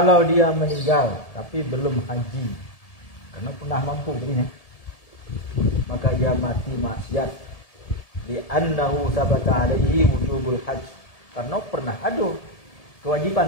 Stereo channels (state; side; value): late; right; 1.7 ms